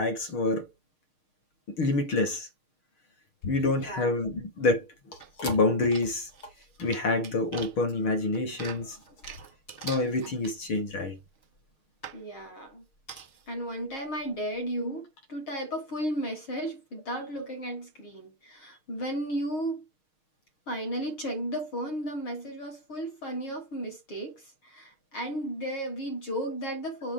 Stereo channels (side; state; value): right; late; 6.5 ms